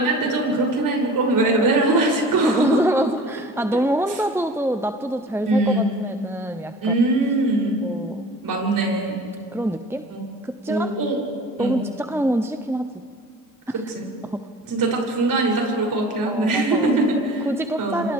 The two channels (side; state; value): both; normal; correlation 0.41